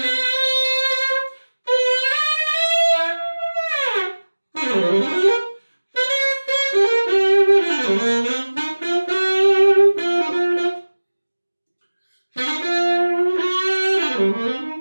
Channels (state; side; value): inverted; both; correlation -1.00